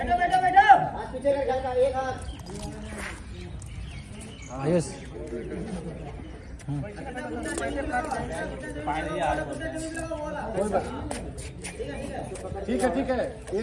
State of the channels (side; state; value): both; identical; correlation 1.00